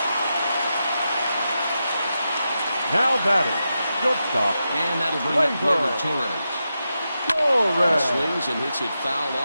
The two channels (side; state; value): both; inverted; correlation -0.88